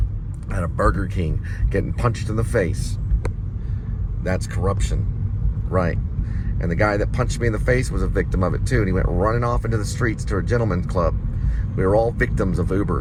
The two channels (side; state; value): both; identical; correlation 1.00